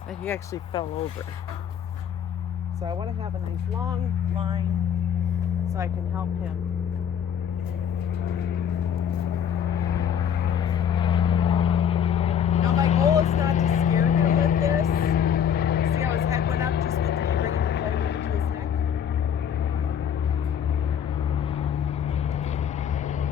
he actually fell over. So I want to have a nice long line so I can help him. Now my goal is not to scare him with this. See how his head went up just with bringing the flag over to his neck?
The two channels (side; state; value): right; quieter; 8.5 dB